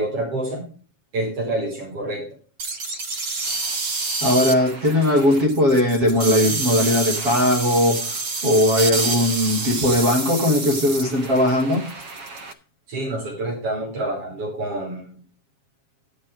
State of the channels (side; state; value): left; late; 7.3 ms